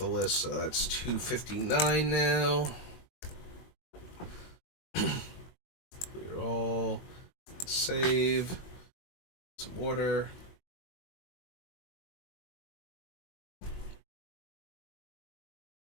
list, so that's 259 now. Clear all. Save. Some order.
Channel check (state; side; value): late; right; 22 ms